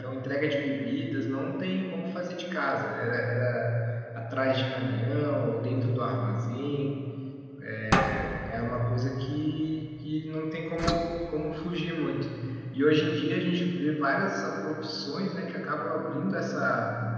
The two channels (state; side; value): identical; both; correlation 1.00